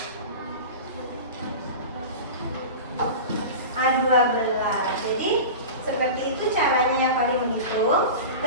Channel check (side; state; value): both; inverted; correlation -0.31